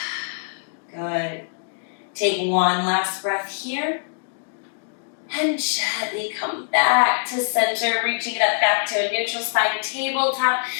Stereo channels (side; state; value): right; silent; digital silence